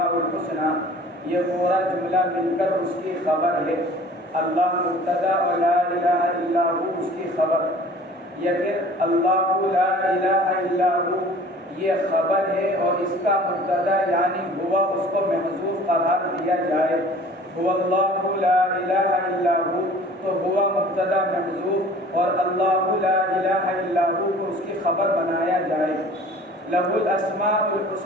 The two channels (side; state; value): both; normal; correlation 0.47